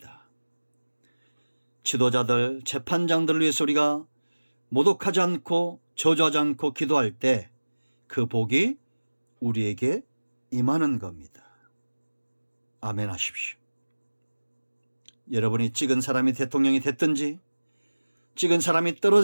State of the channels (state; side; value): inverted; both; correlation -1.00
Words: 지도자들, 재판장들을 위해서 우리가 모독하지 않고 저주하지 않고 기도할 때 그 복이 우리에게 임하는 겁니다. 아멘 하십시오. 여러분이 찍은 사람이 대통령이 됐든지 찍은 사람이